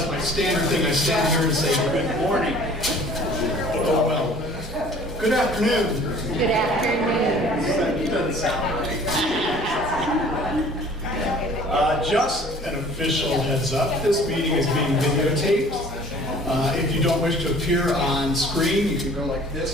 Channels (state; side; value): normal; both; correlation 0.50